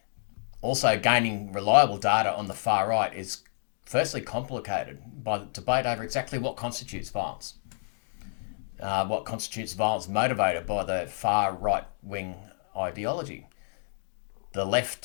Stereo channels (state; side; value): silent; right; digital silence